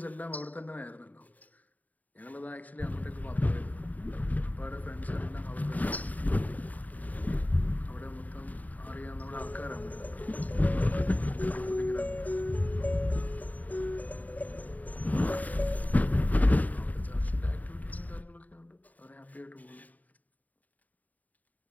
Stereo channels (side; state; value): right; late; 0.076 ms